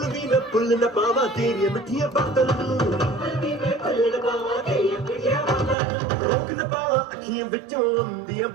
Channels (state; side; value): drops out; left; at 5.8 s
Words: ਵੀ ਮੈਂ ਭੁੱਲ ਨਾ ਪਾਵਾਂ ਤੇਰੀਆਂ ਮਿੱਠੀਆਂ ਬਾਤਾਂ ਨੂੰ ਰੋਕ ਨਾ ਪਾਵਾਂ ਅੱਖੀਆਂ ਵਿੱਚੋਂ ਆਉਂਦੀਆਂ